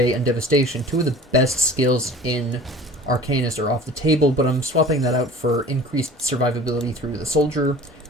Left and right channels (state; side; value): normal; both; correlation 0.43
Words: and Devastation, two of the best skills in Arcanist, are off the table, but I'm swapping that out for increased survivability through the soldier,